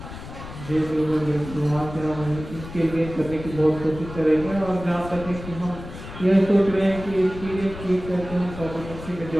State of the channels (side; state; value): left; noise; rumble, 12 dB below the sound